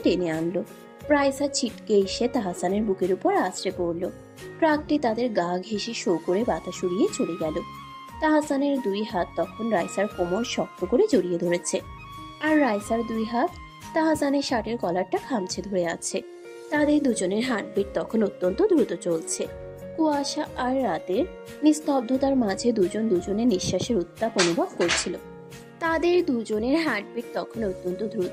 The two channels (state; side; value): identical; both; correlation 1.00